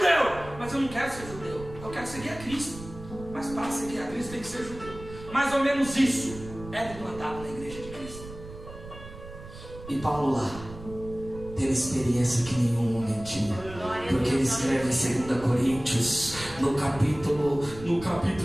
Mas eu não quero ser judeu. Eu quero seguir a Cristo. Mas para seguir a Cristo tem que ser judeu. Mais ou menos isso é implantado na igreja de Cristo. E Paulo lá teve experiência que nenhum homem tinha. Porque ele escreve em 2 Coríntios, no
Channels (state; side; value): noise; right; rumble, 14 dB below the sound